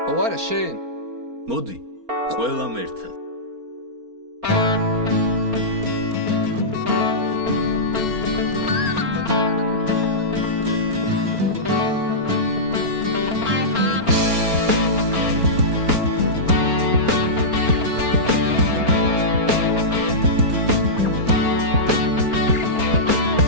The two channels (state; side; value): late; left; 4.4 ms